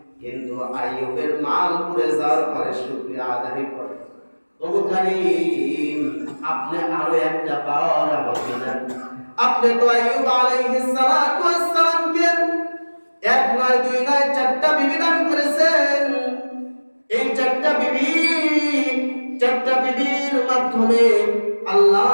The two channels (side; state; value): both; inverted; correlation -1.00